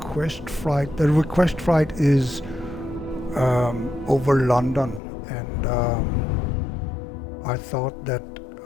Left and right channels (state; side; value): drops out; right; at 5.0 s